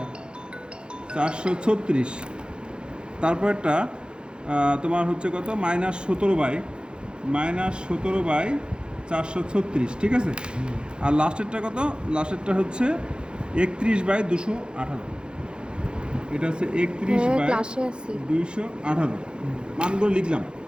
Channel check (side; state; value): left; late; 0.051 ms